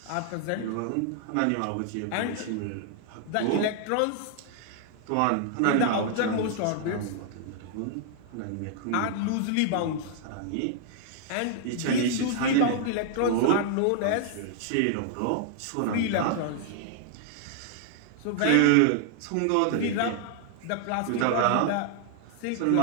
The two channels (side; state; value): both; different; correlation 0.00